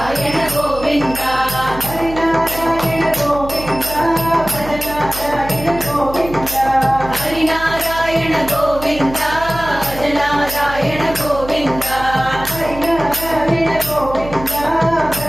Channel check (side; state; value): right; noise; hum, 12 dB below the sound